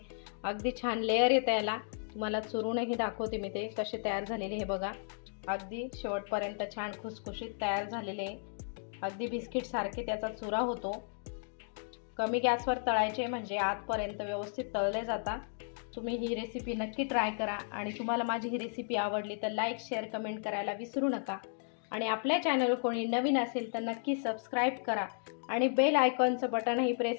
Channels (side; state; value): right; silent; digital silence